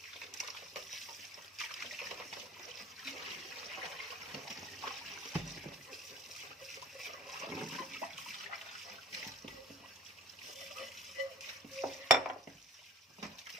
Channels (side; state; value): both; normal; correlation 0.40